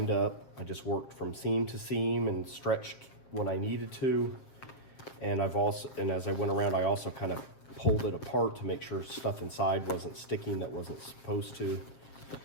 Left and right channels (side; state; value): right; late; 7.5 ms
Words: up. I just worked from seam to seam and stretched when I needed to. And as I went around, I also kind of pulled it apart to make sure stuff inside wasn't sticking that wasn't supposed to.